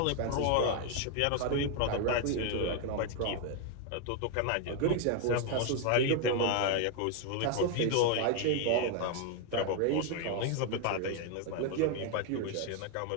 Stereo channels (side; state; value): both; different; correlation 0.01